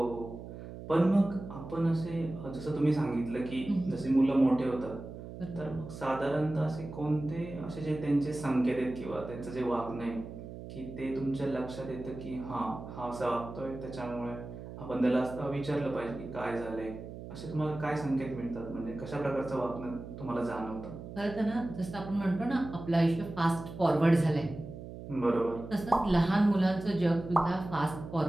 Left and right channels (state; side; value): noise; right; hum, 11 dB below the sound